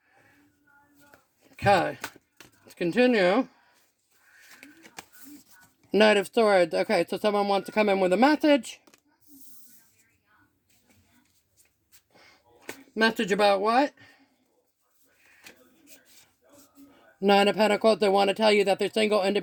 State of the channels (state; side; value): identical; both; correlation 1.00